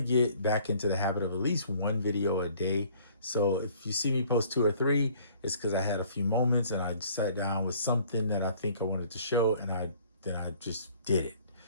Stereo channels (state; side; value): inverted; both; correlation -0.56